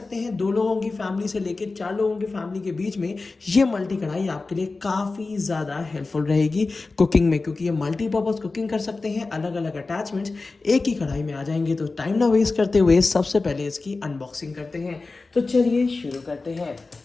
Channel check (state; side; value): quieter; right; 3.7 dB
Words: हैं 2 लोगों की फैमिली से लेकर 4 लोगों की फैमिली के बीच में ये मल्टी कढ़ाई आपके लिए काफ़ी ज़्यादा हेल्पफुल रहेगी कुकिंग में, क्योंकि ये मल्टीपर्पज़ कुकिंग कर सकते हैं। अलग अलग अटैचमेंट्स एक ही कढ़ाई में आ जाएंगे। तो टाइम ना वेस्ट करते हुए सबसे पहले इसकी अनबॉक्सिंग करते हैं। तो चलिए शुरू करते हैं।